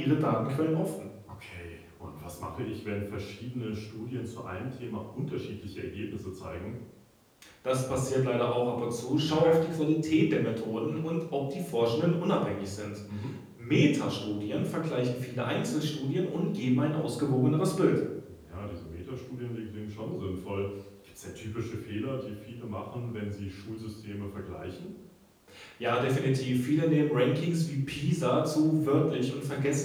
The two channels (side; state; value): both; identical; correlation 1.00